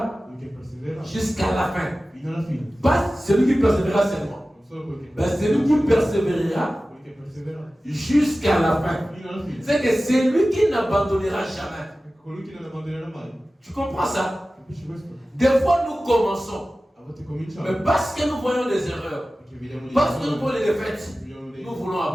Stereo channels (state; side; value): normal; both; correlation 0.96